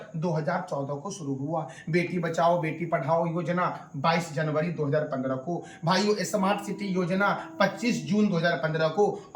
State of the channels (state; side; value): identical; both; correlation 1.00